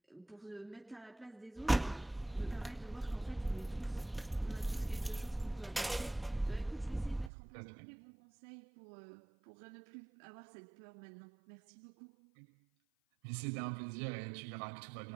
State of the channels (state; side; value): drops out; left; at 7.3 s